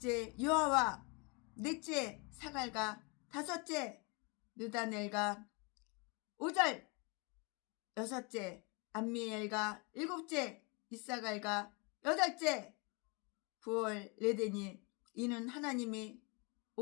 요아와 넷째 사갈과 다섯째 느다넬과 5절 여섯째 암미엘과 일곱째 이사갈과 여덟째 부올레데니. 이는 하나님이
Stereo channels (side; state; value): right; quieter; 31.2 dB